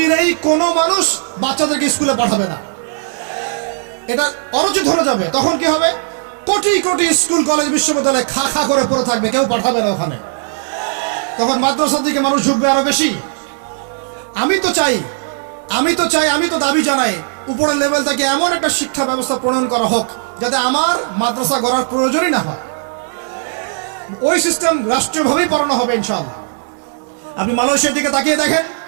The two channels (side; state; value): left; silent; 60 dB below the other